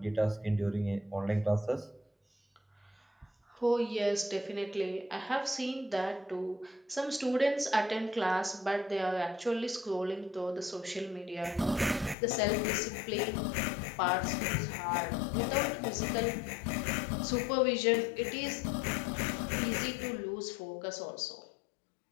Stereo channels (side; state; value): right; drops out; at 12.2 s